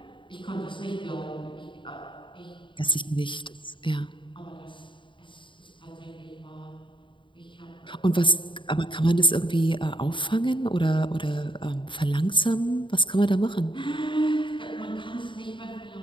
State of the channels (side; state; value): right; late; 0.24 ms